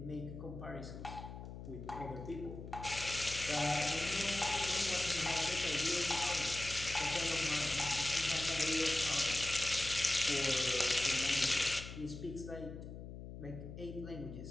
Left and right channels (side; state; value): left; noise; hum, 11 dB below the sound